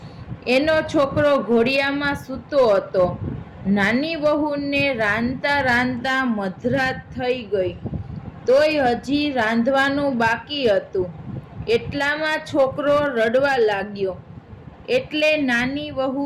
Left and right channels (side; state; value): both; identical; correlation 1.00